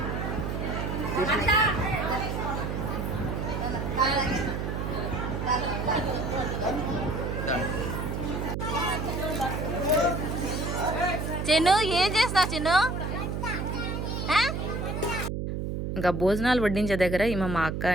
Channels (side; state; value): right; noise; hum, 3 dB below the sound